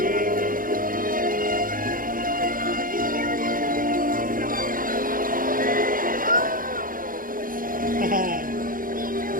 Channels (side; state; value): left; late; 0.40 ms